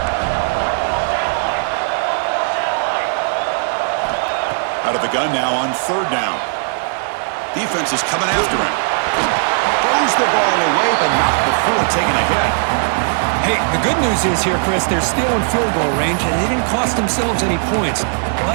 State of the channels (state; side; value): silent; left; digital silence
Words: Out of the gun now on 3rd down. Defense is coming after him. Throws the ball away, but not before taking a hit. Hey, the good news is here, Chris, they're still in field goal range, and they didn't cost themselves any points,